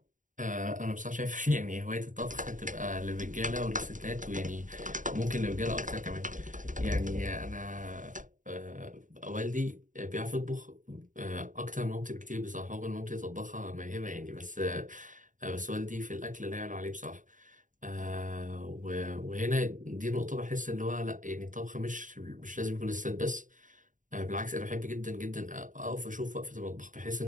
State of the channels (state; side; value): late; left; 0.38 ms